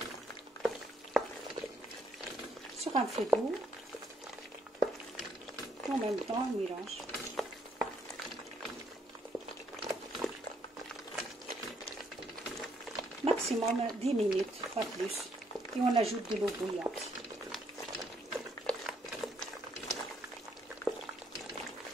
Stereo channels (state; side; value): normal; both; correlation 0.71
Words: sur un feu doux. En même temps on mélange. Maximum 10 minutes, pas plus, et on ajoute de l'eau bouillante.